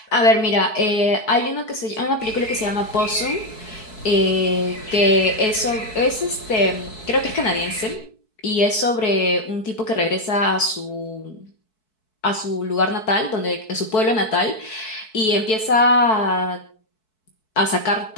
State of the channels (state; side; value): late; right; 4.6 ms